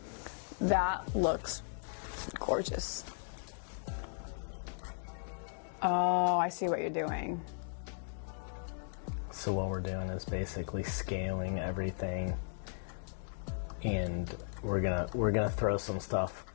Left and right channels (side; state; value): right; silent; 53 dB below the other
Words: that looks gorgeous. Oh, I see what you're doing. So what we're doing is basically scaling everything, and we're gonna throw some stuff